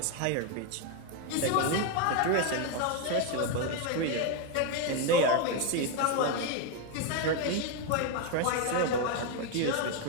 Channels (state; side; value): different; both; correlation 0.02